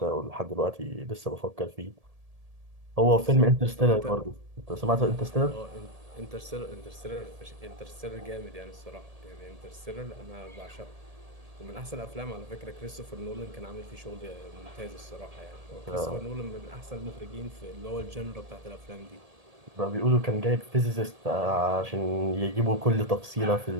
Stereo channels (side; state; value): left; late; 1.7 ms